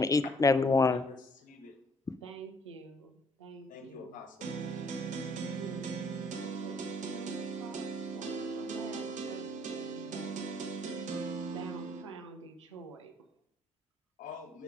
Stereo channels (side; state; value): both; normal; correlation 0.63